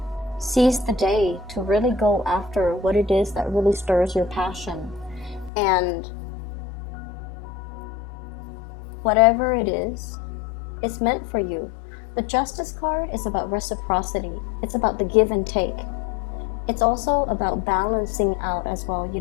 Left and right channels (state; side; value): drops out; right; at 5.5 s